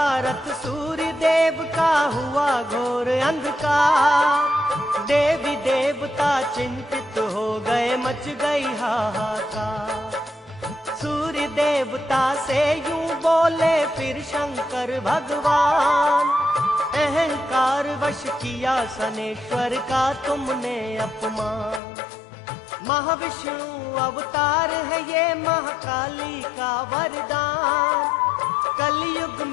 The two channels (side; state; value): right; drops out; at 21.8 s